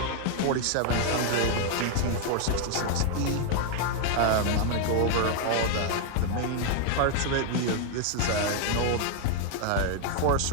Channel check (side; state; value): both; different; correlation 0.00